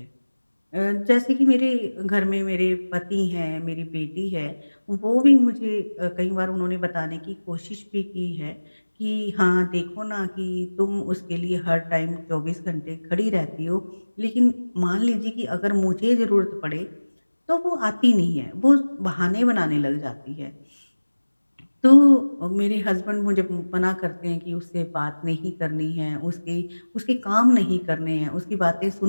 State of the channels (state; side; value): inverted; both; correlation -1.00